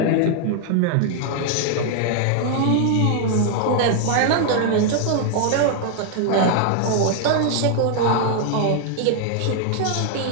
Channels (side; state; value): both; different; correlation 0.00